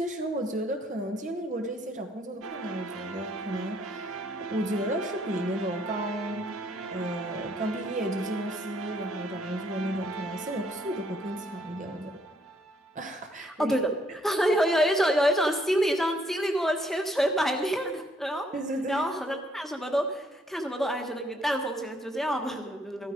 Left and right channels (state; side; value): normal; both; correlation 0.68